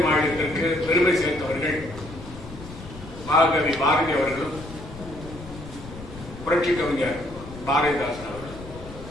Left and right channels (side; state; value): left; noise; rumble, 14 dB below the sound